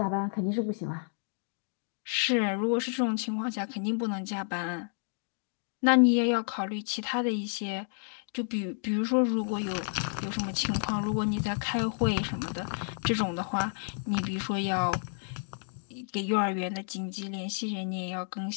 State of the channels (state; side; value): silent; right; digital silence